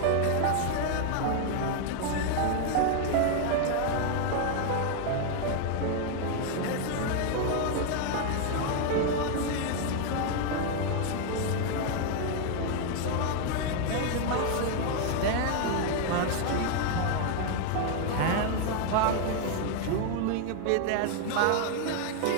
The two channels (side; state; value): both; different; correlation 0.00